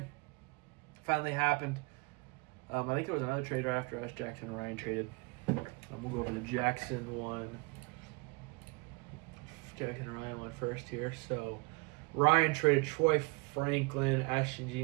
Finally happened. I think there was another trader after us. Jackson and Ryan traded. We'll go over the Jackson one. Jackson and Ryan went first here. So Ryan traded Troy Franklin, Ashton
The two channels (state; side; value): quieter; left; 29.2 dB